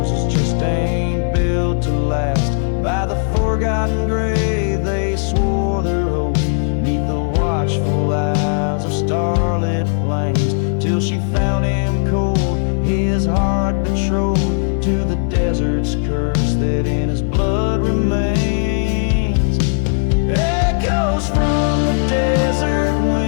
just ain't built to last. By the forgotten grave they swore their oath, neath the watchful eyes of starlit plains, till she found him cold, his heart betrothed to the desert's curse that in his blood remains. Echoes from the desert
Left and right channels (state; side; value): silent; right; 56 dB below the other